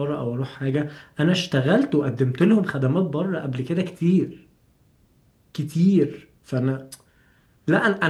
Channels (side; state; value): both; identical; correlation 1.00